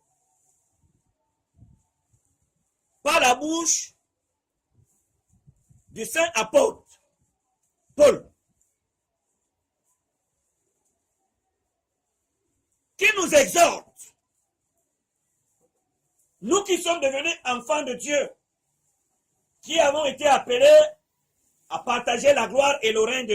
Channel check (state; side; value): identical; both; correlation 1.00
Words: par la bouche du saint apôtre Paul, qui nous exhorte, nous qui sommes devenus enfants de Dieu, qui avons été appelés à partager la gloire et le règne